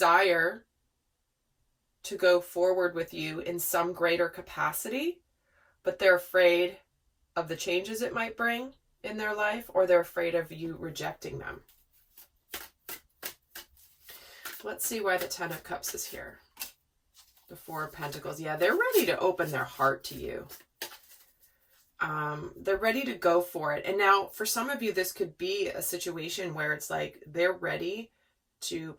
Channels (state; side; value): identical; both; correlation 1.00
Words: to go forward with you in some greater capacity, but they're afraid of the changes it might bring in their life, or they're afraid of you rejecting them. Let's see why the Ten of Cups is here. The Four of Pentacles. Yeah, they're ready to open their heart to you. They're ready to go for it. And now, for some of you, this could be a situation where it's like they're ready to